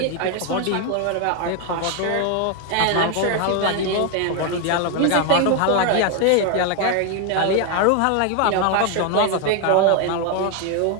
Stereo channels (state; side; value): different; both; correlation 0.01